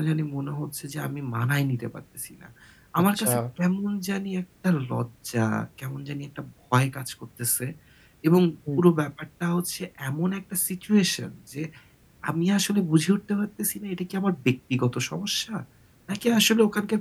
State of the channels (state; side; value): identical; both; correlation 1.00